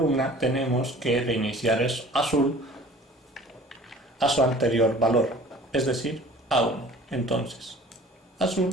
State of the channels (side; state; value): both; normal; correlation 0.47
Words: tenemos que reiniciar el azul a su anterior valor, es decir, a 1. Entonces, azul